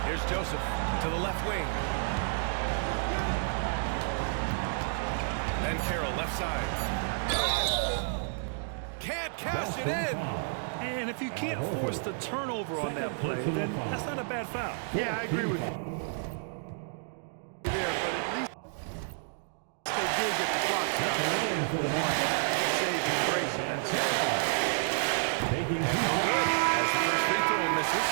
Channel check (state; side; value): silent; left; digital silence